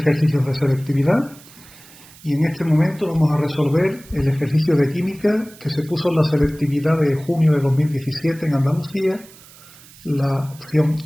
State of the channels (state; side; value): noise; right; hiss, 22 dB below the sound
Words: de selectividad y en este momento vamos a resolver el ejercicio de química que se puso en la selectividad de junio de 2017 en Andalucía, la opción